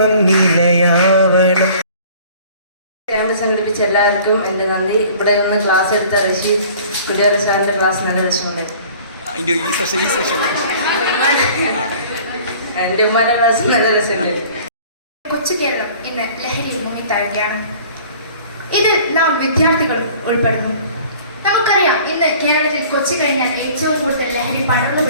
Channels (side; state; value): both; inverted; correlation -0.49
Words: നിലയാവണം. ക്യാമ്പ് സംഘടിപ്പിച്ച എല്ലാവർക്കും എൻ്റെ നന്ദി. ഇവിടെ നിന്ന് ക്ലാസ് എടുത്ത റഷീദ് കുടിയേറ സാറിൻ്റെ ക്ലാസ് നല്ല രസമുണ്ട്. എൻ്റെ ഉമ്മാൻ്റെ ക്ലാസ് നല്ല രസമുണ്ട്. കൊച്ചു കേരളം ഇന്ന് ലഹരിയിൽ മുങ്ങിത്താഴുകയാണ്. ഇതിൽ നാം വിദ്യാർത്ഥികളും ഉൾപ്പെടുന്നു. നമുക്കറിയാം, ഇന്ന് കേരളത്തിൽ കൊച്ചു കഴിഞ്ഞാൽ ഏറ്റവും കൂടുതൽ ലഹരി പടർന്നു